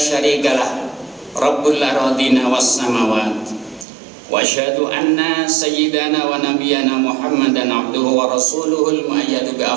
rabbul aradina was samawat, wa asyhadu anna sayyidana wa nabiyyana Muhammadan abduhu wa rasuluhul muayyadu bi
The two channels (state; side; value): drops out; left; at 3.9 s